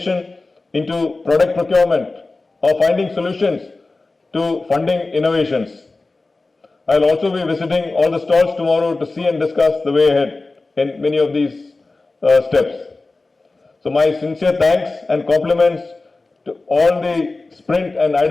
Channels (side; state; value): right; quieter; 3.4 dB